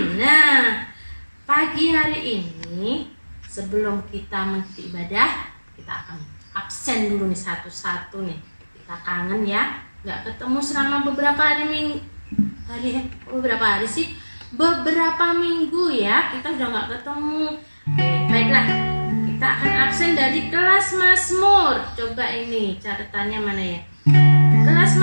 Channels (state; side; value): inverted; both; correlation -1.00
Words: Nah, pagi hari ini sebelum kita mengikuti ibadah, kita akan absen dulu nih satu-satu nih. Kita kangen ya, nggak ketemu selama beberapa minggu ya. Kita udah nggak ketemu. Oke, baiklah. Kita akan absen dari kelas Mazmur. Coba ini catatannya mana ya? Kelas